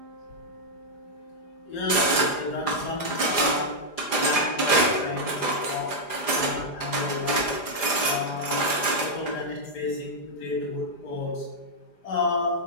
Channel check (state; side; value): late; right; 4.9 ms